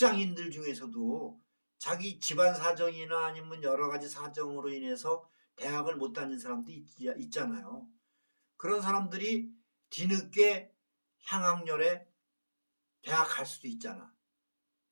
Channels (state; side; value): inverted; both; correlation -1.00